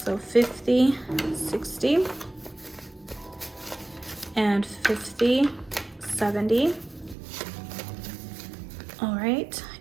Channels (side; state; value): left; drops out; at 7.2 s